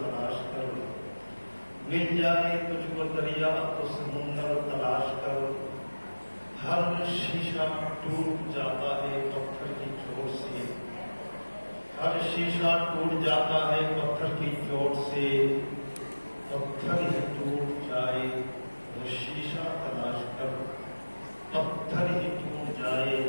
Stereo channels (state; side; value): inverted; both; correlation -1.00